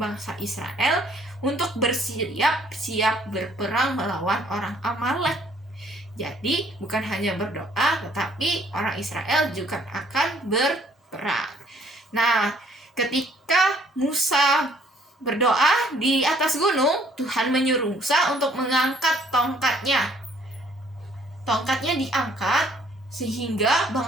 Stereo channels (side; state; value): both; normal; correlation 0.62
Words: bangsa Israel untuk bersiap-siap berperang melawan orang Amalek. Jadi, bukan hanya berdoa, tetapi orang Israel juga akan berperang. Nah, ketika Musa berdoa di atas gunung, Tuhan menyuruh Musa untuk mengangkat tongkatnya. Tongkatnya diangkat sehingga